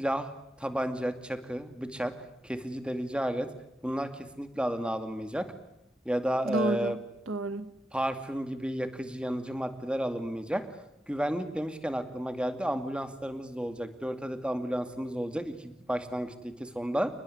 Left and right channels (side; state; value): both; normal; correlation 0.89